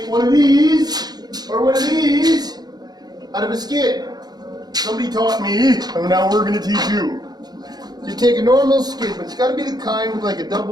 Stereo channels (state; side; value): late; left; 0.19 ms